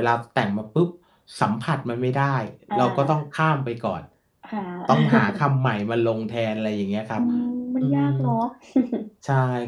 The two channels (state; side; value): identical; both; correlation 1.00